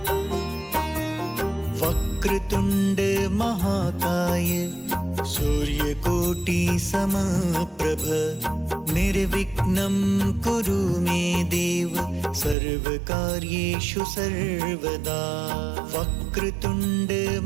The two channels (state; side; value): drops out; left; at 12.6 s